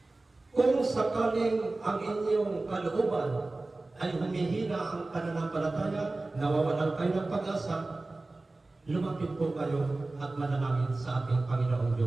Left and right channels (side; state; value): left; quieter; 3.1 dB